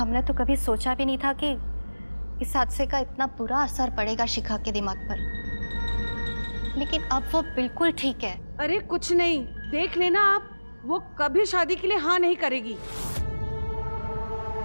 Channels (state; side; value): inverted; both; correlation -1.00